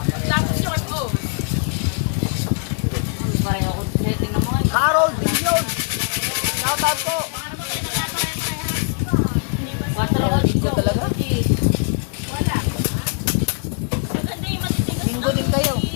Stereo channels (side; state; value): right; quieter; 38.2 dB